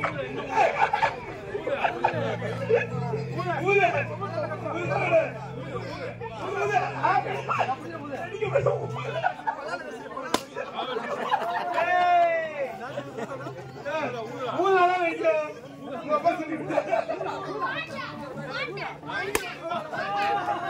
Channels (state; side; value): identical; both; correlation 1.00